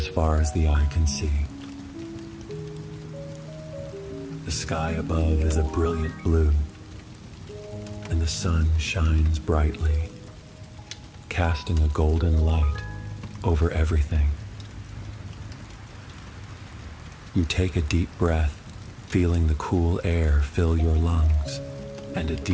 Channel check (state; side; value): identical; both; correlation 1.00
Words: far as the eye can see. The sky above is a brilliant blue, and the sun shines brightly, casting a golden light over everything. You take a deep breath, feeling the cool air fill your lungs, and a